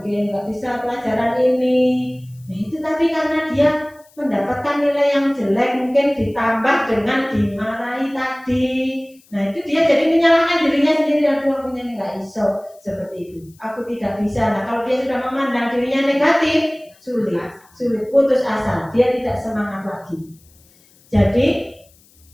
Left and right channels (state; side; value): noise; left; hiss, 30 dB below the sound